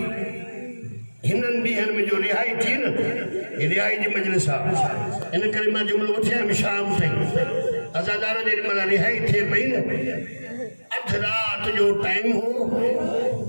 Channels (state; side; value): inverted; both; correlation -1.00